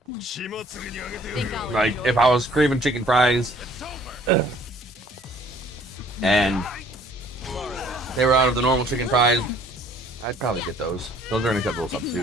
Like, if I was craving chicken fries and they were out of the normal chicken fries, I'd probably get those. Those are an acceptable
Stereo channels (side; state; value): both; normal; correlation 0.57